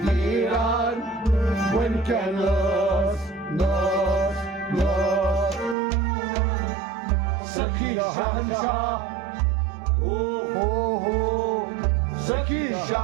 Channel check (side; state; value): left; drops out; at 5.8 s